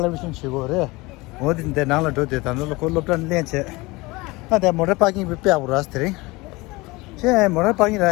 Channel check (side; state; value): right; quieter; 22.8 dB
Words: 치고래 어딘데 나라 도대 단로 콜롭던 렌체 아데 모레 파킹 비페하고 라스트링 제 모레 파킹